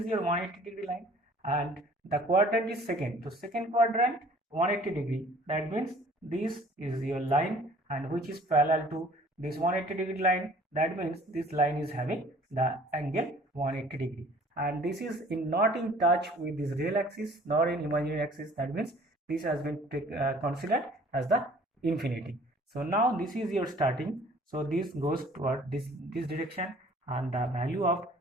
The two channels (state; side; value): normal; both; correlation 0.53